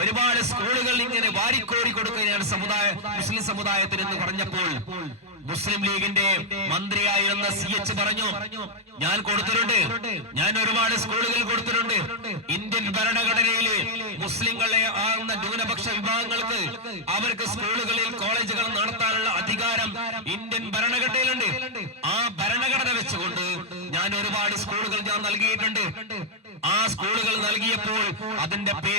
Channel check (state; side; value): normal; both; correlation -0.03